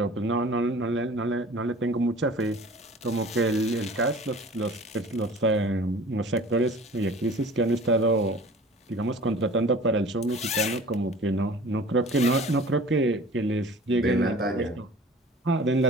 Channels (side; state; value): both; normal; correlation 0.45